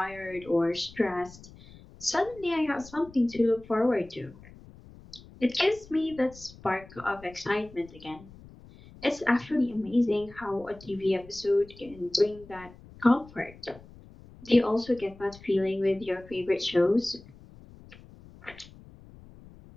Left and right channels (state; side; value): noise; left; rumble, 21 dB below the sound